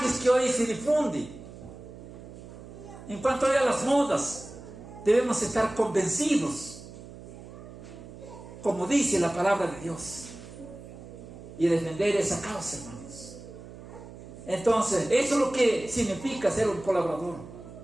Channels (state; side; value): noise; right; hum, 15 dB below the sound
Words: que hoy se difunden, en cuanto a las modas, debemos estar convencidos, como dice la palabra de Dios, y defender esa causa, hermanos. Entonces, eso es lo que significa ser un colaborador.